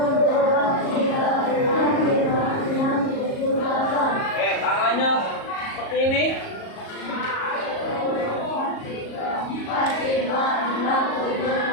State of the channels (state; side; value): late; right; 38 ms